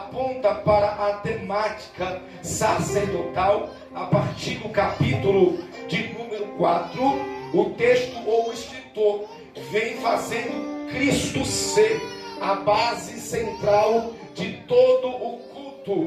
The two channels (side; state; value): both; identical; correlation 1.00